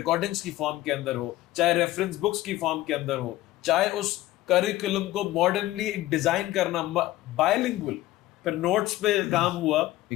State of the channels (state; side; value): quieter; right; 16.1 dB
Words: کی فارم کے اندر ہو، چاہے ریفرنس بکس کی فارم کے اندر ہو، چاہے اس کریکولم کو ماڈرنلی ڈیزائن کرنا بائلنگول، پھر نوٹس پہ کام ہوا.